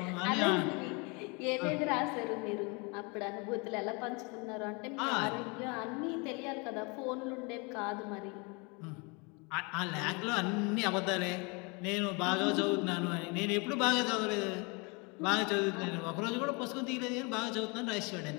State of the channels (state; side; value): quieter; right; 30.3 dB